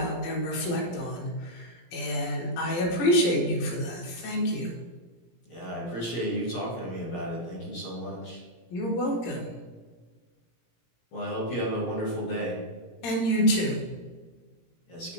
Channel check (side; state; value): right; late; 17 ms